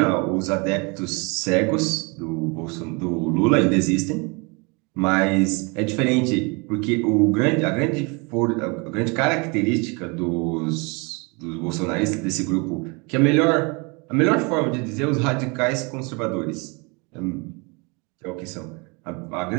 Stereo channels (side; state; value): left; quieter; 30.0 dB